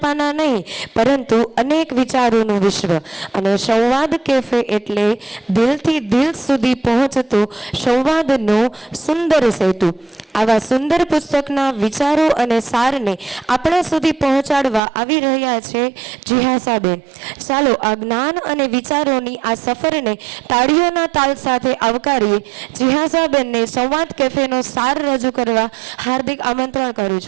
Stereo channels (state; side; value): drops out; left; at 14.8 s